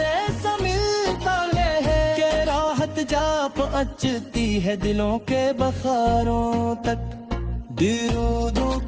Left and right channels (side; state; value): both; identical; correlation 1.00